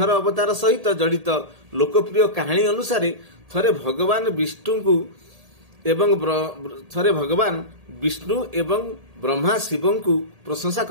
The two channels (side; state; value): left; late; 1.8 ms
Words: अवतार सहित जड़ित लोकप्रिय कहानी अनुसार थरे भगवान विष्णु एवं ब्रह्मा शिव को प्रशंसा